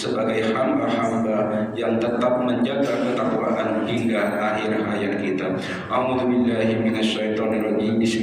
hamba-hamba yang tetap menjaga ketakwaan hingga akhir hayat kita. A'udzubillahi minasyaitonirrajim.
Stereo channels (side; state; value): both; identical; correlation 1.00